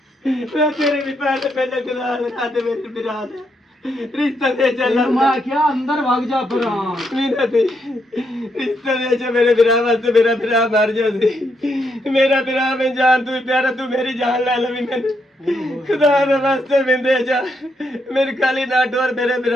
ਮੈਂ ਤੇਰੇ ਵੀ ਪੈਰ ਤੇ ਪਹਿਲੇ ਗੁਜ਼ਾਰ ਲਗਾ ਤੇ ਮੇਰੇ ਬਿਰਾ ਦੇ ਰਿਸ਼ਤਾ ਦੇ ਚੱਲ ਮੈਂ ਕਿਹਾ ਅੰਦਰ ਵਗ ਜਾ ਪਰਾਂ ਮੇਰਾ ਤੇ ਰਿਸ਼ਤਾ ਦੇ ਚ ਮੇਰੇ ਬਿਰਾ ਵਾਸਤੇ ਮੇਰਾ ਬਿਰਾ ਮਰ ਜਾ ਸੀ ਮੇਰਾ ਬਿਰਾ ਮੈਂ ਜਾਨ ਤੂੰ ਪਿਆਰਾ ਤੂੰ ਮੇਰੀ ਜਾਨ ਲੈ ਲਵੀ ਮੈਨੂੰ ਖੁਦਾ ਦੇ ਵਾਸਤੇ ਮਿੰਦੇ ਜਾ ਮੇਰੇ ਕਾਲੀ ਨਾ ਡੋਰ ਮੇਰੇ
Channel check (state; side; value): normal; both; correlation 0.78